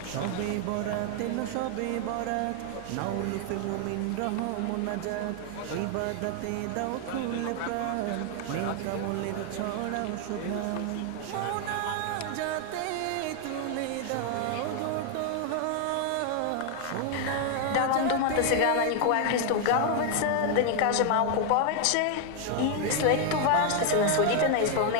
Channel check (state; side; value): different; both; correlation 0.00